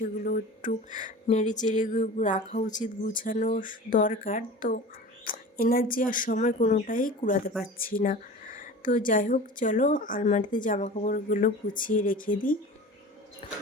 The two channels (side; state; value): both; normal; correlation 0.37